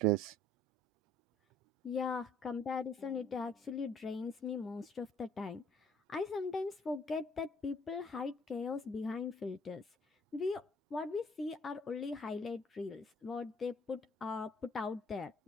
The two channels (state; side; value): normal; both; correlation 0.60